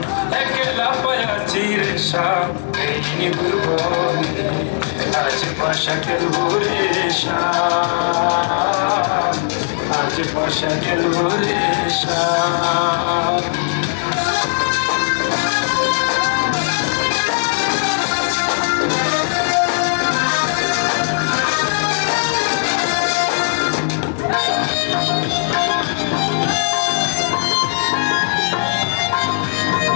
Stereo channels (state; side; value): silent; right; digital silence